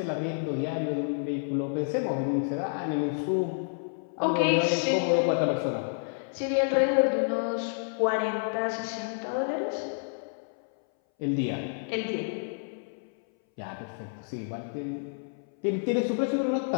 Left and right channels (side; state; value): right; silent; 58 dB below the other